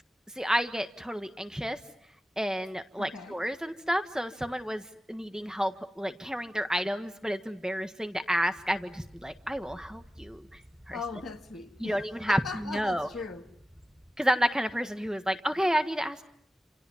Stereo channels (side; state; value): both; normal; correlation 0.94